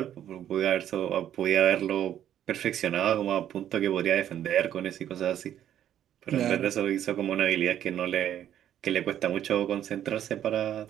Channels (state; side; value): quieter; left; 10.8 dB